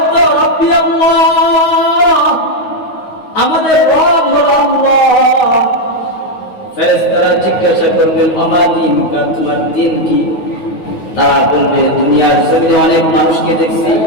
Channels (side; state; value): right; late; 9.4 ms